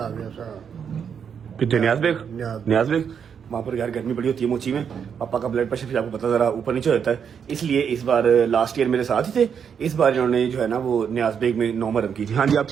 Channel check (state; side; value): quieter; left; 7.4 dB